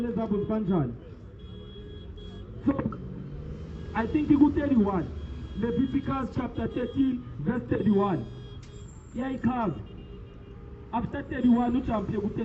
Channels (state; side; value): identical; both; correlation 1.00